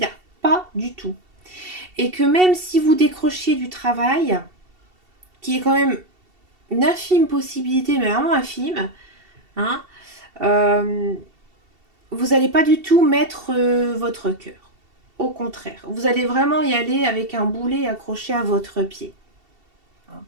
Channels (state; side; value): late; left; 2.7 ms